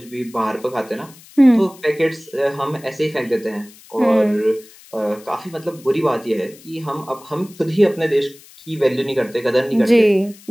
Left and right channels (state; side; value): noise; left; hiss, 23 dB below the sound